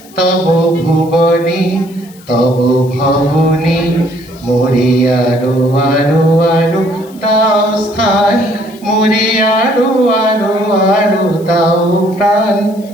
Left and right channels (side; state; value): left; noise; hiss, 25 dB below the sound